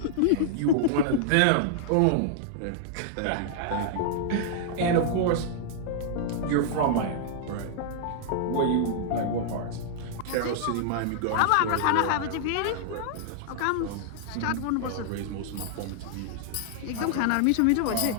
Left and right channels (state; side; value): different; both; correlation -0.01